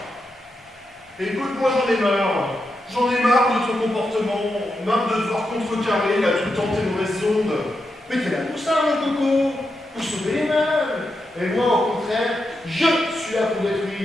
Écoute, moi j'en ai marre. J'en ai marre de ton comportement, marre de devoir contrecarrer là tout le temps tes mauvaises ondes. Mais t'es là pour ça, mon coco, pour sauver les meubles. Et moi, au contraire, je suis là pour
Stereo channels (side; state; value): both; normal; correlation 0.86